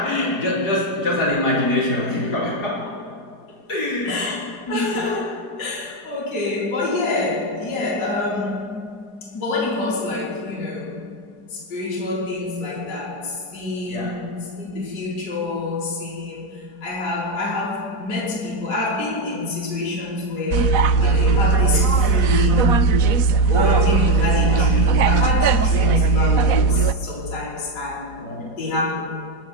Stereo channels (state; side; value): late; right; 4.8 ms